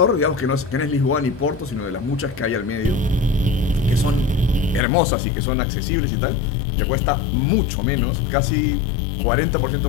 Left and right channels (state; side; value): drops out; right; at 4.8 s